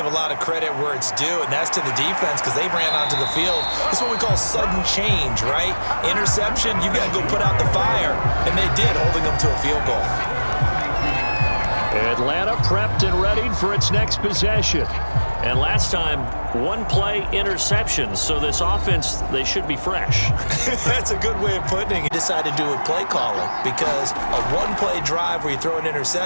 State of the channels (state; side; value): inverted; both; correlation -1.00